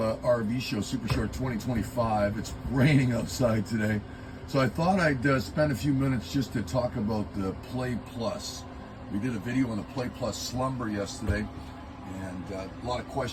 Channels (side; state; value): both; identical; correlation 1.00